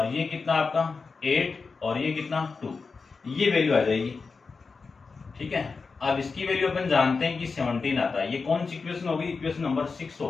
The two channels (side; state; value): right; quieter; 4.6 dB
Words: ये कितना आपका? 8 और ये कितना? 2, ये वैल्यू आ जाएगी। ठीक है, अब इसकी वैल्यू अपन जानते हैं कि 17 आता है। ये कौन सी इक्वेशन होगी? इक्वेशन नंबर 6